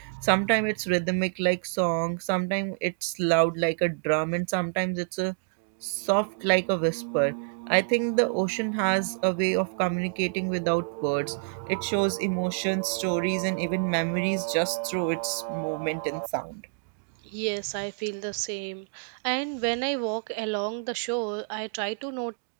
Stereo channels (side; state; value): left; silent; digital silence